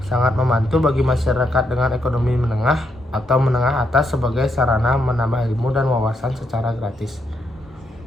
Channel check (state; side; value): normal; both; correlation 0.79